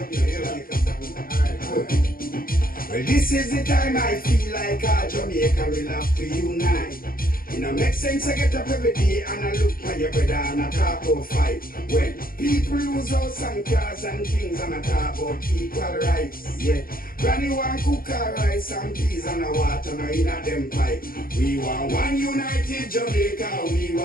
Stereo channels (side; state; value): right; late; 0.42 ms